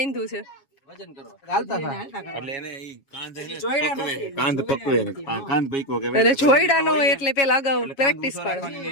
છે? જોઈડા નો હોય એટલે પેલા અગાઉ પ્રેક્ટિસ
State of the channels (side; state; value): right; late; 7.3 ms